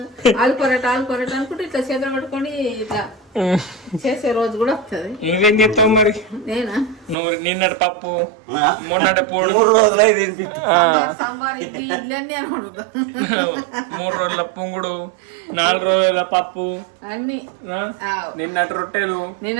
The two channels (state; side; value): drops out; left; at 7.2 s